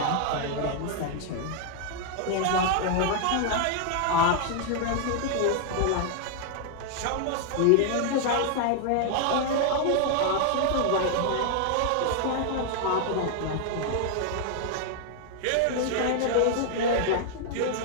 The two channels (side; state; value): both; different; correlation 0.00